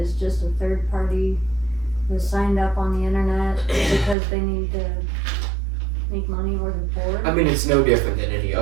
just a third party who signed up on the internet because they need to make money or they're bored. I mean, it's no different than any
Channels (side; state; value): left; drops out; at 4.2 s